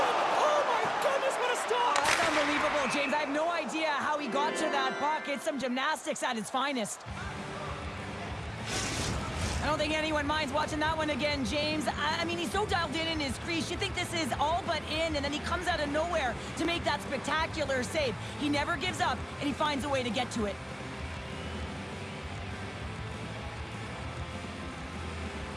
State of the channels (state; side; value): identical; both; correlation 1.00